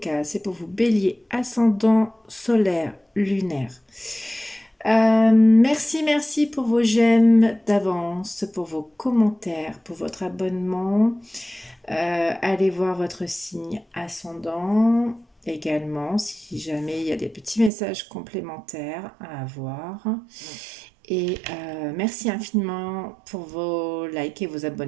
c'est pour vous bélier, ascendant, solaire, lunaire. Merci pour vos j'aime d'avance, pour vos commentaires, pour votre abonnement. Allez voir votre signe ascendant également si jamais il y a des petits messages complémentaires à avoir. Et merci infiniment pour vos likes et vos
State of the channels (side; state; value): left; drops out; at 17.7 s